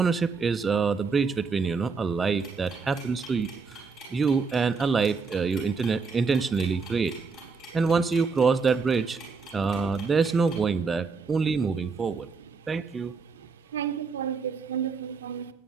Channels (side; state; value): left; quieter; 4.8 dB